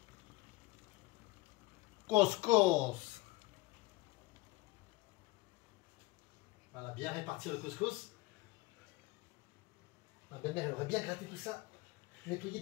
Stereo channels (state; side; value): quieter; right; 20.7 dB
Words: Couscous. Voilà, bien répartir le couscous. Ma belle-mère, elle aurait bien gratté tout ça. Nettoyer